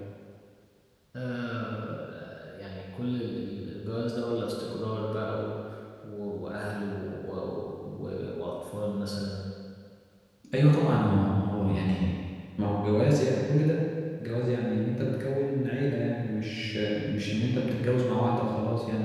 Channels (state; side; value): identical; both; correlation 1.00